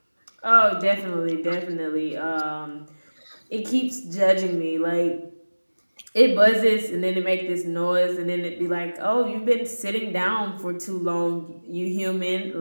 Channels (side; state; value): both; inverted; correlation -1.00